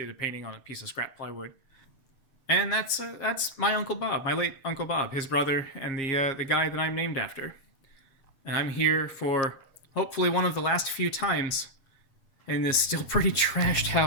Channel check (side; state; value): right; late; 7.4 ms